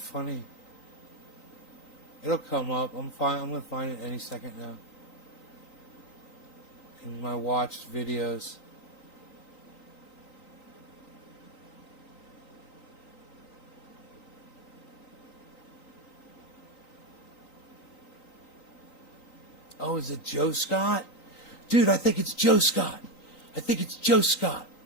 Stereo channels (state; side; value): late; right; 3.9 ms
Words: It'll come up. I'm fine. I'm gonna find it any second now. In my watched videos. Oh, is it Joe Scott? Dude, I think it's Joe Scott. I think it's Joe Scott.